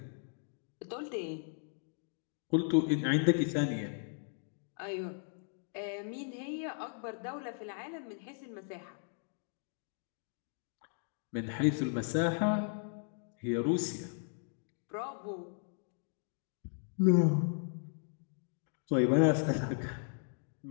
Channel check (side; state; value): right; silent; 54 dB below the other